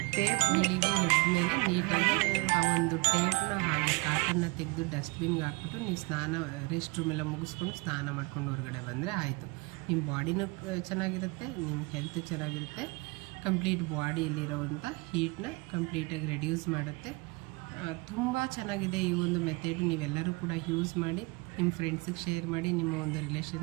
ಟೇಪ್ ಬೆಳಿಗ್ಗೆ ಎದ್ಮೇಲೆ ನೀಟಾಗಿ ಆ ಒಂದು ಟೇಪ್ನ ಹಾಗೆ ಕಾಟನ್ನ ತೆಗೆದು ಡಸ್ಟ್ಬಿನ್ಗೆ ಹಾಕ್ಬಿಟ್ಟು ನೀವು ರೆಸ್ಟ್ ರೂಮೆಲ್ಲ ಮುಗಿಸ್ಕೊಂಡು ಸ್ನಾನ ಮಾಡ್ಕೊಂಡು ಹೊರಗಡೆ ಬಂದರೆ ಆಯಿತು. ನಿಮ್ಮ ಬಾಡಿನೂ ಚೆನ್ನಾಗಿರುತ್ತೆ, ನಿಮ್ಮ ಹೆಲ್ತ್ ಚೆನ್ನಾಗಿರುತ್ತೆ. ಕಂಪ್ಲೀಟ್ ಬಾಡಿಯಲ್ಲಿರೋವಂಥ ಹೀಟ್ನ ಕಂಪ್ಲೀಟಾಗಿ ರೆಡ್ಯೂಸ್ ಮಾಡುತ್ತೆ. ತುಂಬ ಚೆನ್ನಾಗಿದೆ ಈ ಒಂದು ಮೆಥಡ್. ನೀವೆಲ್ಲರೂ ಕೂಡ ಯೂಸ್ ಮಾಡಿ, ನಿಮ್ಮ ಫ್ರೆಂಡ್ಸಿಗೆ ಶೇರ್ ಮಾಡಿ, ನಿಮ್ಮ ಒಂದು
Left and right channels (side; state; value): left; quieter; 26.6 dB